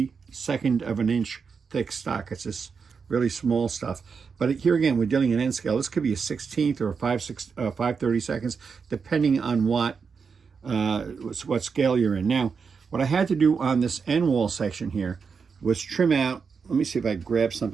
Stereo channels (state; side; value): quieter; left; 5.7 dB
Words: of an inch thick stock. It's this really small stuff. But here again, we're dealing in N scale. This could be a 16th or a 5/32, depending on what scale you're in. Now, what I had to do on this end wall section here was trim out. Let me see if I grab